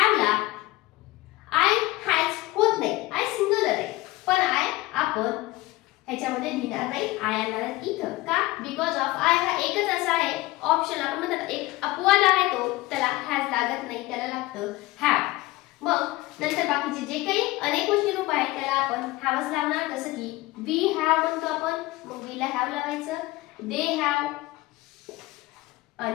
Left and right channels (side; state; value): right; quieter; 19.3 dB